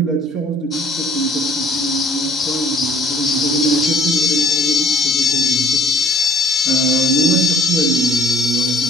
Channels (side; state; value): both; normal; correlation 0.56